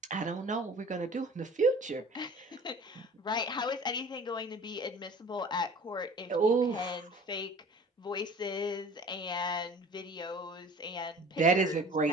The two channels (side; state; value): both; normal; correlation 0.44